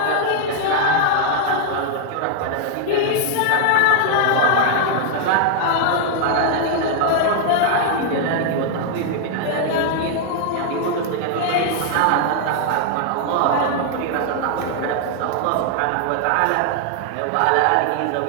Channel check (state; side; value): different; both; correlation 0.00